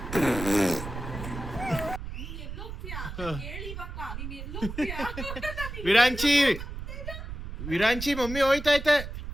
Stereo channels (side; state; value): right; noise; rumble, 8 dB below the sound